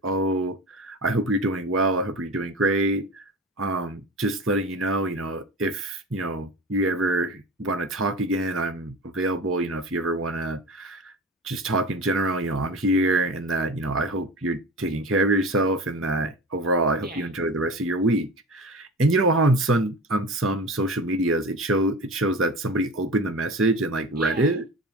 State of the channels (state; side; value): normal; both; correlation 0.32